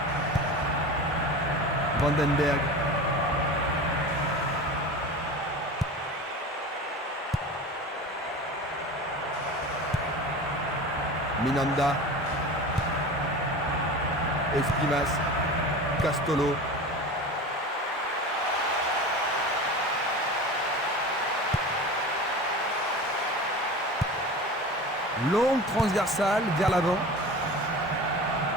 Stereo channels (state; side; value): normal; both; correlation 0.33